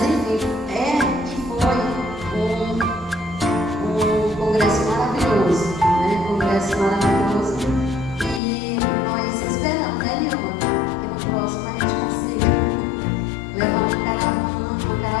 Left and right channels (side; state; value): right; drops out; at 8.4 s